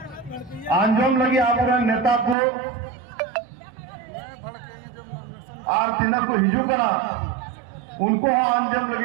आंजोम लगी आवरण नेता को और तिनक को हिजू करा उनको आंजम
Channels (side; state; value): left; drops out; at 2.4 s